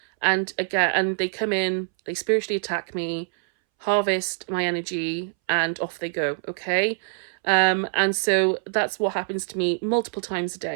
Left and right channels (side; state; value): left; silent; 62 dB below the other